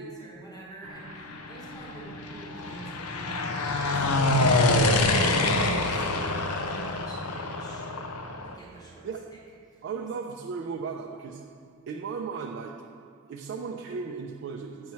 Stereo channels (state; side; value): normal; both; correlation 0.11